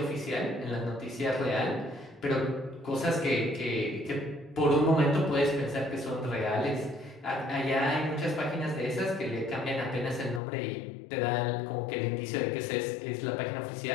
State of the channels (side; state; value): right; drops out; at 10.4 s